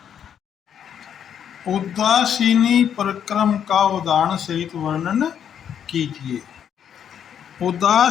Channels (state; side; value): quieter; right; 8.8 dB